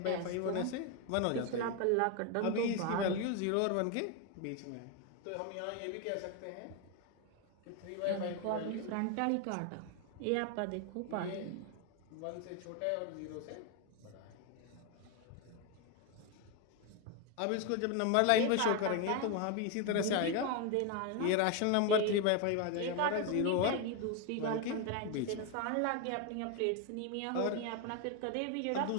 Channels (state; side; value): different; both; correlation 0.02